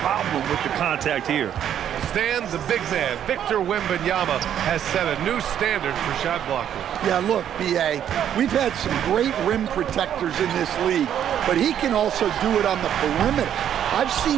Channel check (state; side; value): quieter; left; 9.9 dB